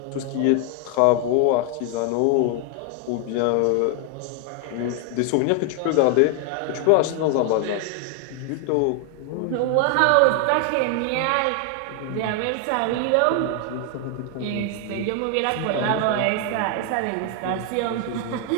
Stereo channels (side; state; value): both; different; correlation 0.00